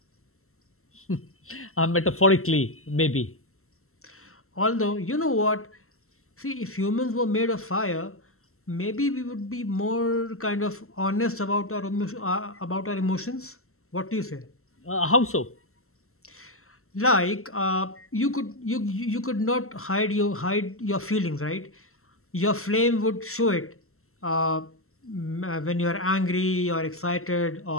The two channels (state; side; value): late; right; 0.63 ms